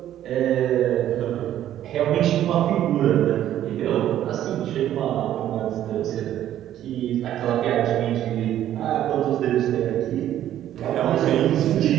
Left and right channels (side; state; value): left; quieter; 11.8 dB